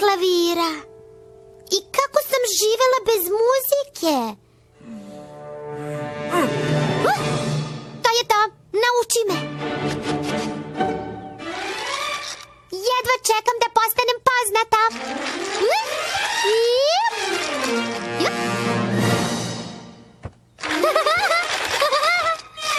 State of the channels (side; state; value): both; identical; correlation 1.00